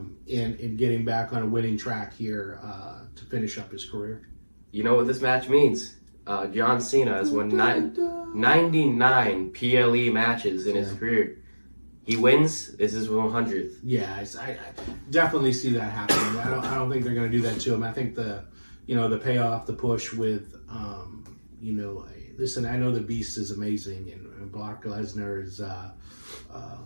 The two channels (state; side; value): inverted; both; correlation -1.00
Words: getting back on a winning track here to finish up his career. You know what this match means? John Cena has won 99 PLE matches in his career. He wins. This is 100th. Yeah, I definitely see that happening. I don't think they're going to do that to him. I think the payoff, the push with, listen, I know the Beast is amazing, and Brock Lesnar is